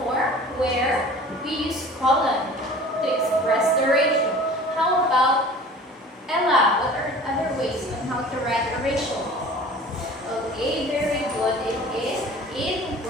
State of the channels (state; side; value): normal; both; correlation 0.44